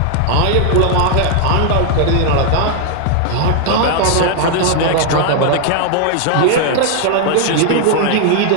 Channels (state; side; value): different; both; correlation 0.00